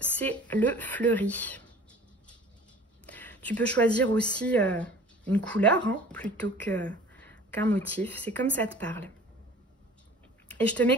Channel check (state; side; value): normal; both; correlation 0.46